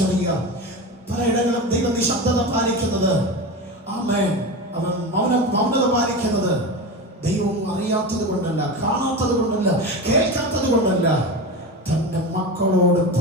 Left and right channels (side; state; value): both; normal; correlation 0.24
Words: പലയിടങ്ങളും ദൈവം നിശബ്ദത പാലിക്കുന്നത്, അവൻ മൗനത പാലിക്കുന്നത് ദൈവം അറിയാത്തത് കൊണ്ടല്ല, കാണാത്തത് കൊണ്ടല്ല, കേൾക്കാത്തത് കൊണ്ടല്ല. തന്റെ മക്കളോട്